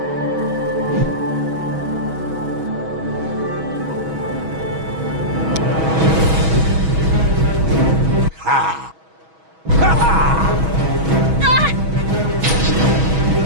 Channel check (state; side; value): late; left; 6.2 ms